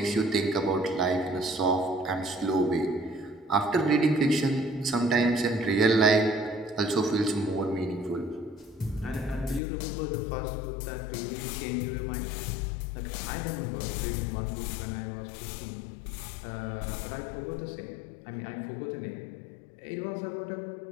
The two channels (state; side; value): drops out; right; at 9.6 s